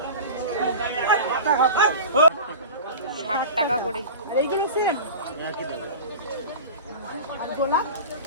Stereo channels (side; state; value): both; inverted; correlation -0.32